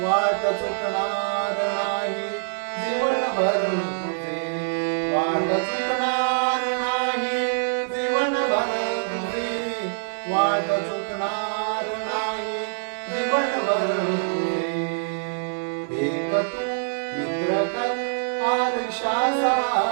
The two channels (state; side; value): silent; left; 62 dB below the other